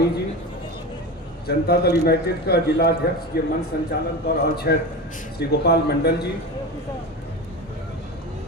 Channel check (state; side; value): normal; both; correlation 0.26